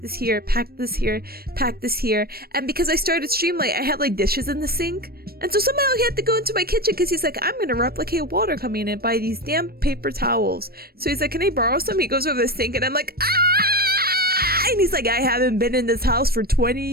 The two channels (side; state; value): left; late; 0.44 ms